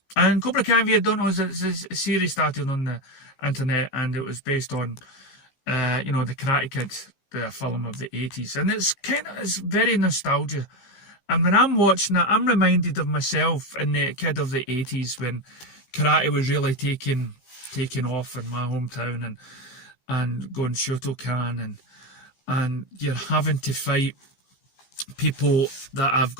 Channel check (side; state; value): right; late; 15 ms